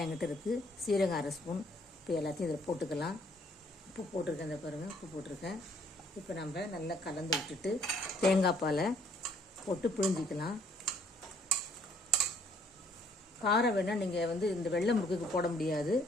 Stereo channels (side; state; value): both; normal; correlation 0.63